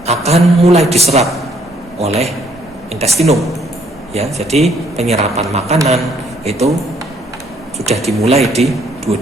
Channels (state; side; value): normal; both; correlation 0.66